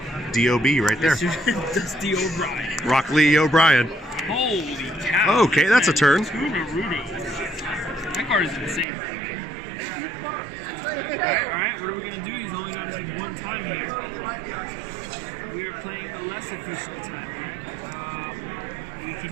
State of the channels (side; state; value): left; drops out; at 8.8 s